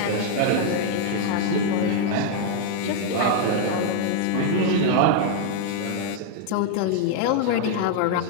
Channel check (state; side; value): different; both; correlation 0.00